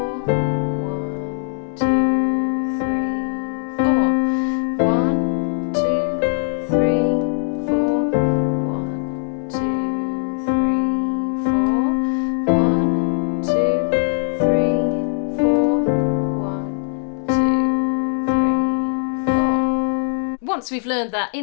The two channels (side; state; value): right; silent; 66 dB below the other